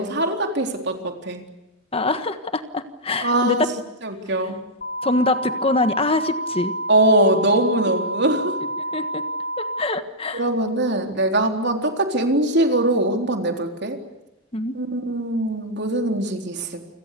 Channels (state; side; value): normal; both; correlation -0.09